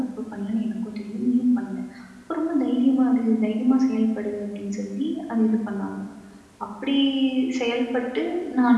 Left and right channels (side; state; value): both; identical; correlation 1.00